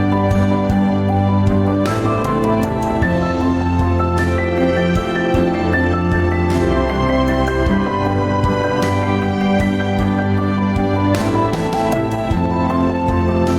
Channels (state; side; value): identical; both; correlation 1.00